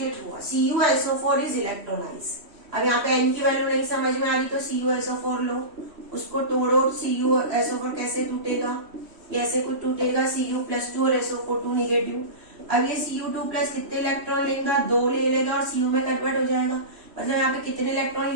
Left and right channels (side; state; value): left; late; 3.1 ms